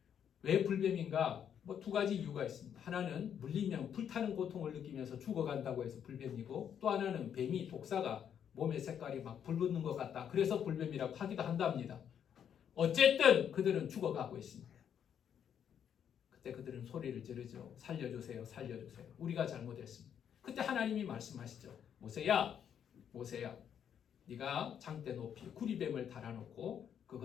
왜 불뱀인가? 두 가지 이유가 있습니다. 하나는 물리면 불타는 고통을 느끼면서 죽어간다고 해서 불뱀이고 또 하나는 뱀이 독사가 몸의 색깔이 막 불붙는 것 같다. 그래서 불뱀이라고 하기도 한답니다. 어쨌든 그들은 죽어가고 있습니다. 그때 그들은 소리를 지르죠. 살려주세요. 살려주세요. 우리가 잘못했습니다. 그때 하나님이 말씀하시죠. 모세야 네가 장대 높이 구리뱀을 달아놓고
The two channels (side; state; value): right; quieter; 8.7 dB